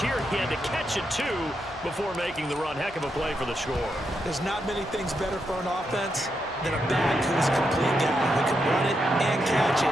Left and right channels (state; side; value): normal; both; correlation 0.83